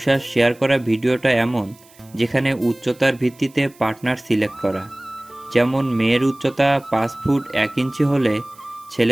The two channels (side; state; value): right; noise; hiss, 27 dB below the sound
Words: শেয়ার করা ভিডিওটা এমন যেখানে উচ্চতার ভিত্তিতে পার্টনার সিলেক্ট করা। যেমন মেয়ের উচ্চতা 5 ফুট 1 ইঞ্চি হলে